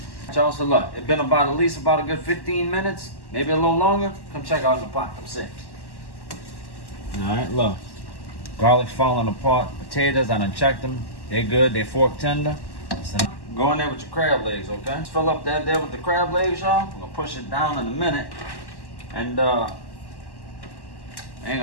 Y'all, so look, it's been at least about a good 15 minutes, maybe a little longer. Come check out the pot. Come see. All right, look. Garlic's falling apart. Potatoes, I done checked them. They good. They fork tender. So go in there with your crab legs, okay? Just fill up that there with the crab legs, y'all. I'm gonna push it down in a minute. And I ain't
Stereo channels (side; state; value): right; late; 1.1 ms